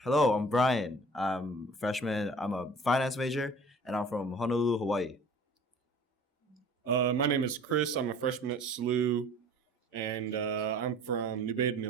Hello, I'm Brian. I'm a freshman. I'm a finance major, and I'm from Honolulu, Hawaii. My name is Chris. I'm a freshman at SLU, and I'm from New Baden,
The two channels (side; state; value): both; normal; correlation 0.47